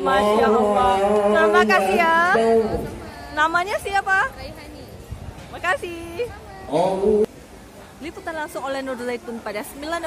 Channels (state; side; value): identical; both; correlation 1.00